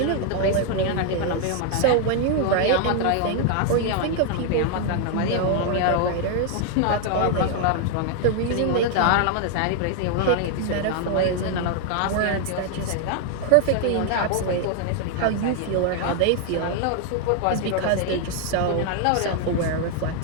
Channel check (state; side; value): different; both; correlation 0.00